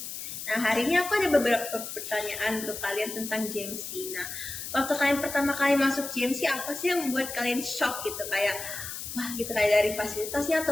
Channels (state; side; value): noise; left; hiss, 8 dB below the sound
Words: Nah, hari ini aku ada beberapa pertanyaan untuk kalian tentang GMC. Nah, waktu kalian pertama kali masuk GMC, apa sih yang membuat kalian shock gitu? Kayak, wah gitu, kayak dari fasilitasnya